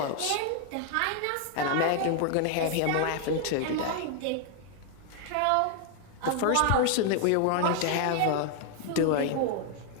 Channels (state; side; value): different; both; correlation 0.00